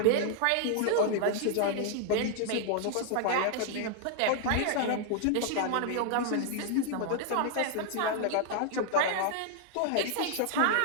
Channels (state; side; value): different; both; correlation 0.00